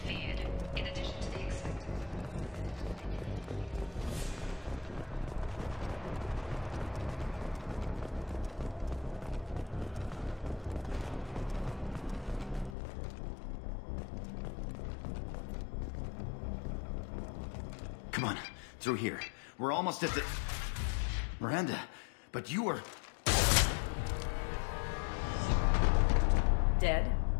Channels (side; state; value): right; drops out; at 12.8 s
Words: feared. In addition to the expected... Come on, through here. We're almost at the... Miranda, but you were... Dead?